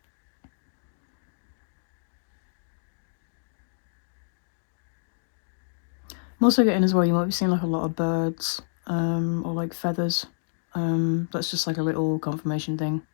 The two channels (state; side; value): silent; right; digital silence